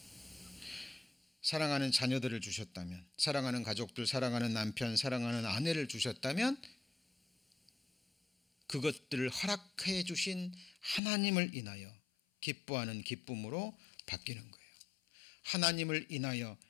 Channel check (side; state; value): right; drops out; at 11.0 s